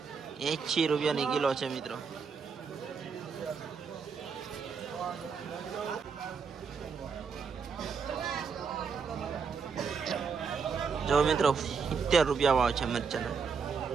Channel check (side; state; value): left; quieter; 5.7 dB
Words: 80 રૂપિયાની કિલો છે મિત્રો. જો મિત્રો 70 રૂપિયા ભાવ છે મરચાના,